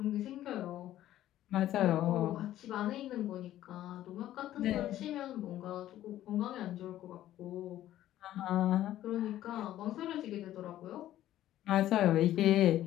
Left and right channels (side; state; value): right; quieter; 13.2 dB